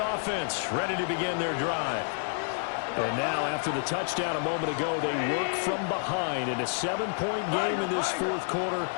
ready to begin their drive. And now, after the touchdown a moment ago, they work from behind in a 7-point game in this 4th quarter.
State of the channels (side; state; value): right; silent; 58 dB below the other